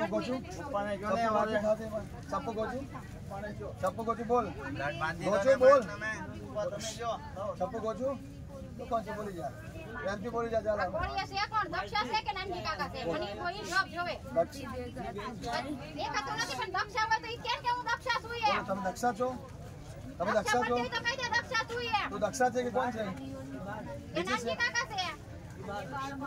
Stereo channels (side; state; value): both; identical; correlation 1.00